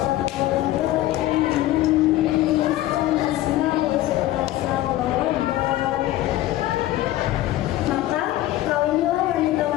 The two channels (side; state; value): right; quieter; 15.2 dB